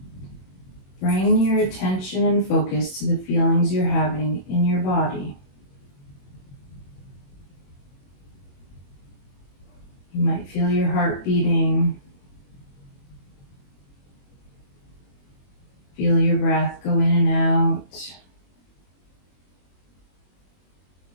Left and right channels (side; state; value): right; late; 21 ms